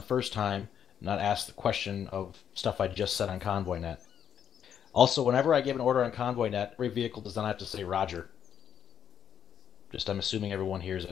first time, not ask the question of stuff I just said on Convoy net. Also, whenever I give an order on Convoy net, every vehicle does not have to say Roger. Just, I'm assuming everyone hears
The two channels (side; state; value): right; quieter; 8.8 dB